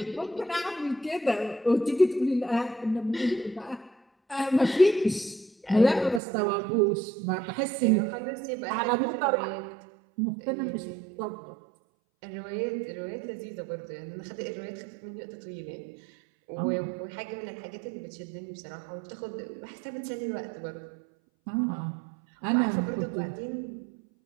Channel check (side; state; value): left; drops out; at 6.2 s